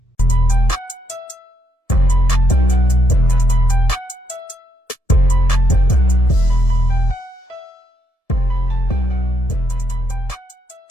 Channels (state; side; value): late; right; 1.7 ms